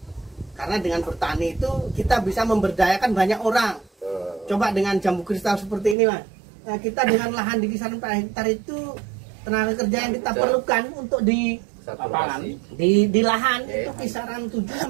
Karena dengan bertani itu kita bisa memberdayakan banyak orang. Coba dengan jambu kristal seperti ini, Mas. Nah, kita dengan lahan di kisaran 4 hektar itu tenaga kerja yang kita perlukan untuk di lapangan di lahan itu kisaran 7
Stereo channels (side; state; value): left; drops out; at 6.0 s